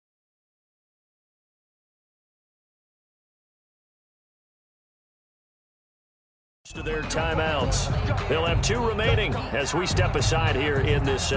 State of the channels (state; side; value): identical; both; correlation 1.00